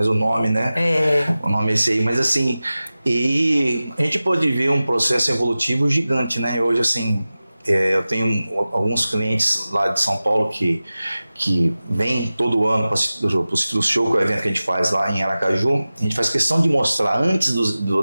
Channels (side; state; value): both; inverted; correlation -0.96